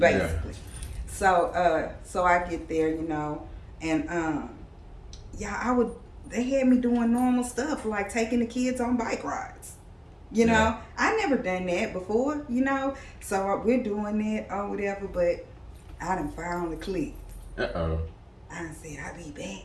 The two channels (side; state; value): both; identical; correlation 1.00